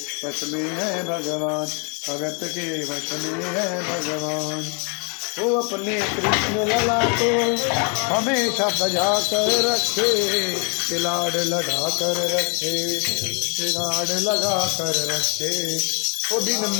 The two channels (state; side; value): quieter; right; 36.6 dB